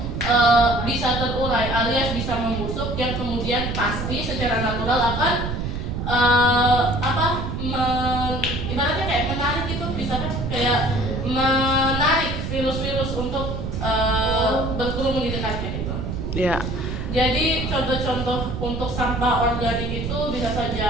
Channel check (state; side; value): noise; right; rumble, 4 dB below the sound